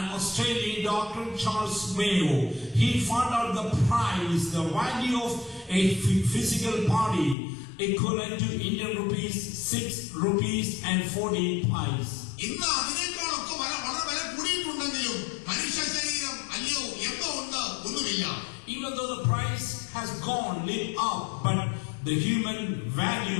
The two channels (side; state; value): right; drops out; at 7.4 s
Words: Australian doctor, Charles Mayo, he found out the price, the value of a physical body equivalent to Indian rupees 6.40 rupees. ഇന്ന് അതിനേക്കാളൊക്കെ വളരെ വില കൂടിയിട്ടുണ്ടെങ്കിലും മനുഷ്യ ശരീരം അല്ലയോ എന്തോ ഉണ്ട് ഒന്നുമില്ല. Even though the price has gone, lit up, but the human